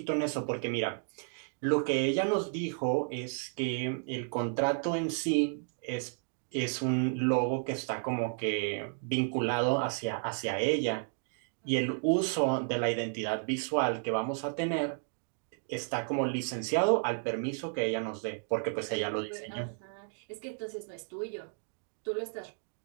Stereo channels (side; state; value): left; silent; 56 dB below the other